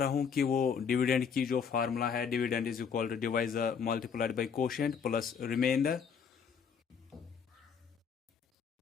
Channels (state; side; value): quieter; right; 6.7 dB